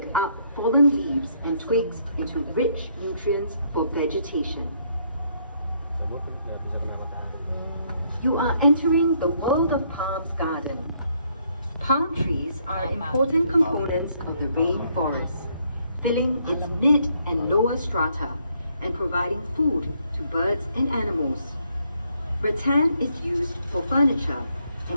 up fallen leaves and twigs into rich nutrients for vegetation. You are entering the World of Palms garden. Palm trees are important components of the rainforest, filling its mid and lower strata and providing food to birds and animals. Rattan is used for furniture,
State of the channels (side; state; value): both; inverted; correlation -0.70